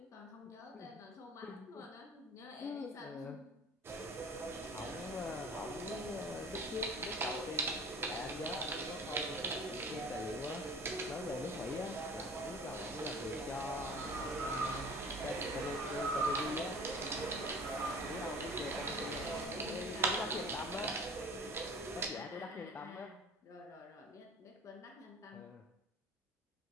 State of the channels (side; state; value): both; normal; correlation 0.43